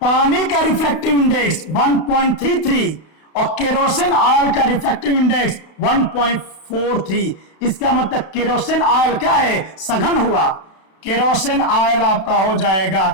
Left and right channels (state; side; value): late; right; 32 ms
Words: का रिफ्रैक्टिव इंडेक्स 1.33 और केरोसिन ऑयल का रिफ्रैक्टिव इंडेक्स 1.43। इसका मतलब केरोसिन ऑयल क्या है, सघन हुआ। केरोसिन ऑयल आपका हो